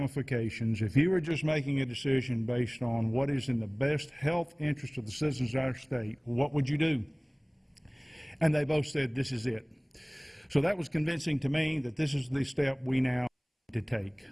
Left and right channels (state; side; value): identical; both; correlation 1.00